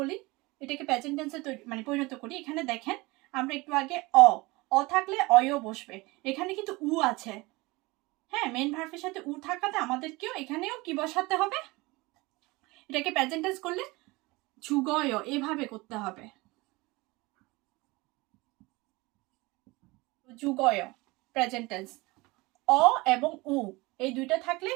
এটাকে প্রেজেন্ট টেন্সে মানে পরিণত করি, এখানে দেখেন আমরা একটু আগে অ থাকলে অয়ও বসবে, এখানে কিন্তু উ আছে, হ্যাঁ, মেন ভার্বের সাথে উ থাকাতে আমাদেরকেও এখানেও কি বসাতে হবে, এটাকে প্রেজেন্ট টেন্স করলে যুগয় এভাবে করতে হবে, যুগয় প্রেজেন্ট টেন্স। অ এবং উ এই দুইটা থাকলে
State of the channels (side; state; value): left; quieter; 23.0 dB